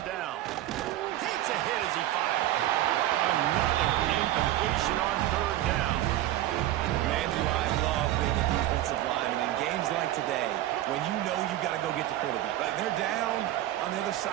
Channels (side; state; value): left; quieter; 14.1 dB